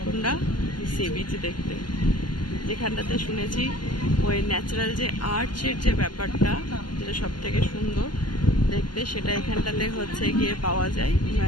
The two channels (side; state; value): right; late; 0.71 ms